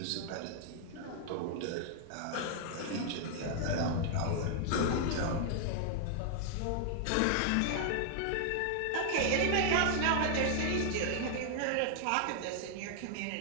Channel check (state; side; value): different; both; correlation 0.00